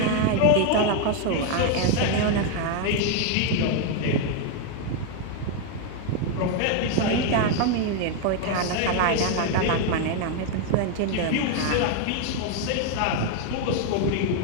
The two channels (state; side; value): different; both; correlation 0.01